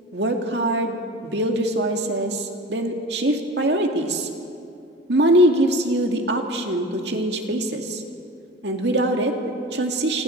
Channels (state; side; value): normal; both; correlation 0.35